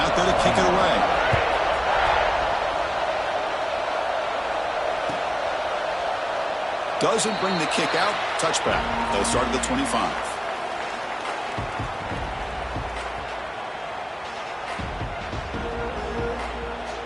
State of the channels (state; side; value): identical; both; correlation 1.00